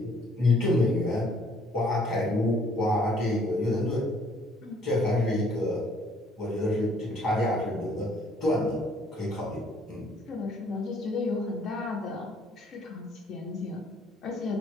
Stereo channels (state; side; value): normal; both; correlation 0.62